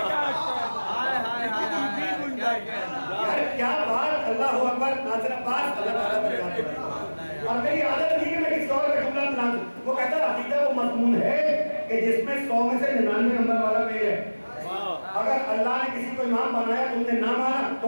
کیا بات, اللہ اکبر. ناصر عباس اللہ تعالیٰ برکات دے. اور میری عادت نہیں کہ میں کسی اور کا جملہ بنا دوں. وہ کہتا ہے عقیدہ وہ مضمون ہے کہ جس میں 100 میں سے 99 نمبر والا فیل ہے. اگر اللہ نے کسی کو امام بنایا تم نے نہ مانا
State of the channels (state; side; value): inverted; both; correlation -1.00